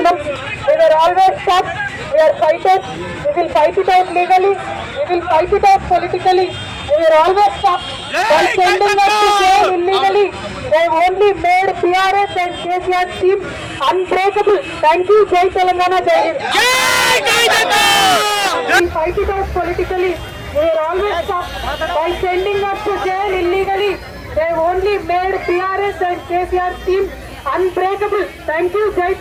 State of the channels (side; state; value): both; identical; correlation 1.00